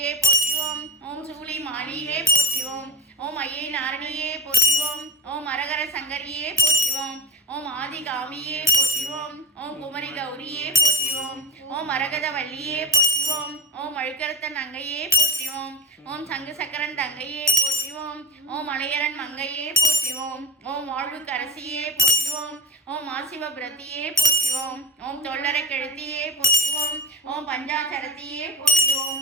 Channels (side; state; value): both; normal; correlation 0.26